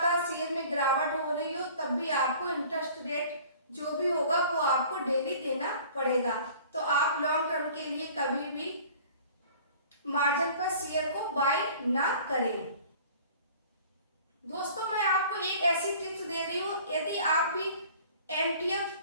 शेयर में गिरावट हो रही हो तब भी आपको इंटरेस्ट रेट जो भी होगा वो आपको डेली देना पड़ेगा। तो आप लॉन्ग टर्म के लिए कभी भी मार्जिन पर शेयर को बाय ना करें। दोस्तों मैं आपको एक ऐसी टिप्स दे रही हूँ, यदि आप भी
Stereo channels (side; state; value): both; inverted; correlation -0.48